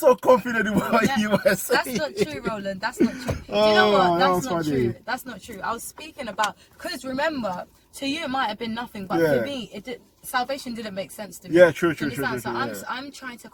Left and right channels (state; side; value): identical; both; correlation 1.00